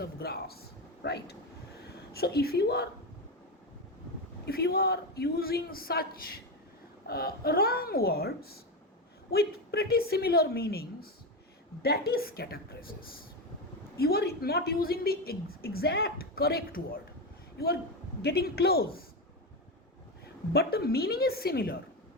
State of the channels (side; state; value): both; normal; correlation 0.14